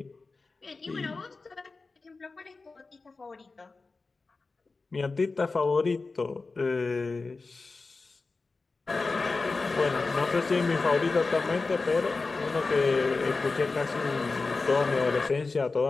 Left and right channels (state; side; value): quieter; right; 3.9 dB